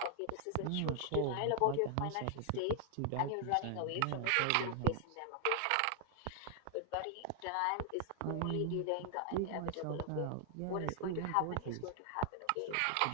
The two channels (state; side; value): different; both; correlation 0.00